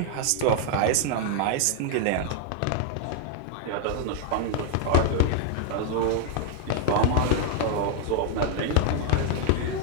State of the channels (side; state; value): both; different; correlation 0.00